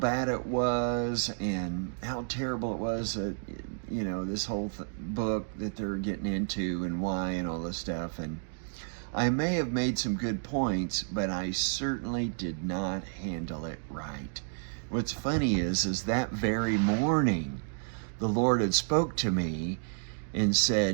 it was and how terrible it was that, this whole book that they're getting into and why and all this stuff. And I may have made some good points, but I certainly did not handle it right. What's funny is that very morning, the Lord had spoke to me and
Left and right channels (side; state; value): left; silent; digital silence